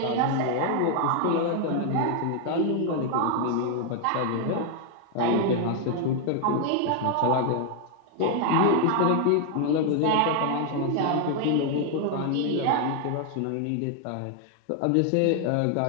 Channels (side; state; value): both; different; correlation 0.00